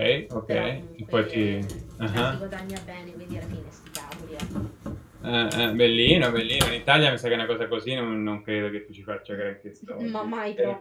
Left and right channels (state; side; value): identical; both; correlation 1.00